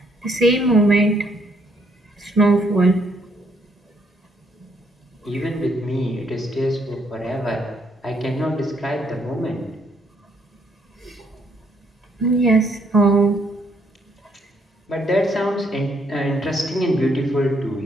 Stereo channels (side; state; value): both; normal; correlation 0.71